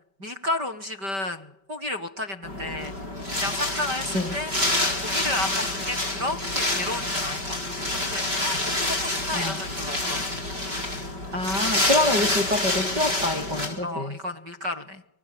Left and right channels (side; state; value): left; late; 5.2 ms